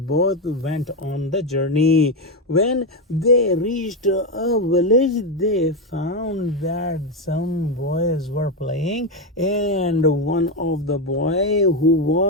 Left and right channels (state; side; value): normal; both; correlation 0.08